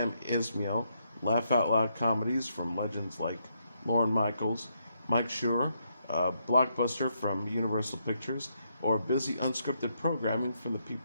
Esmail, laugh-out-loud comedies from legends like Lorne Michaels, Mike Schur, blockbuster from Universal Pictures, or busy unscripted programming from the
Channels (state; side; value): inverted; both; correlation -0.78